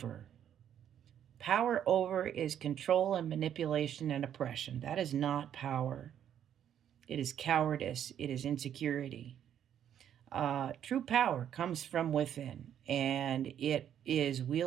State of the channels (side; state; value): left; quieter; 9.8 dB